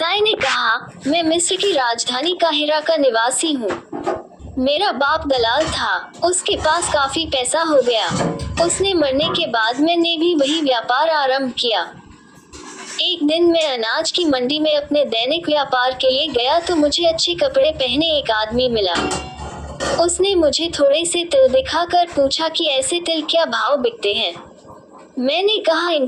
ने कहा, मैं मिस्र की राजधानी काहिरा का निवासी हूँ। मेरा बाप दलाल था, उसके पास काफी पैसा हो गया। उसने मरने के बाद मैंने भी वही व्यापार आरंभ किया। एक दिन मैं अनाज की मंडी में अपने दैनिक व्यापार के लिए गया तो मुझे अच्छे कपड़े पहने एक आदमी मिला। उसने मुझे थोड़े से तिल दिखाकर पूछा कि ऐसे तिल क्या भाव बिकते हैं। मैंने कहा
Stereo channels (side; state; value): both; identical; correlation 1.00